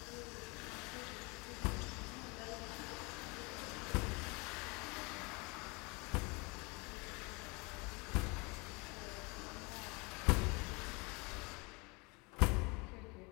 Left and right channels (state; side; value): quieter; right; 28.3 dB